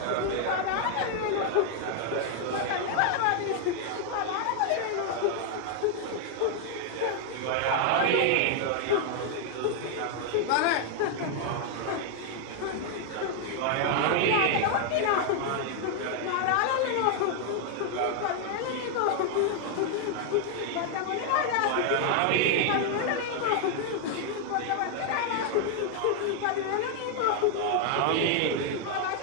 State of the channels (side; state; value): both; different; correlation 0.00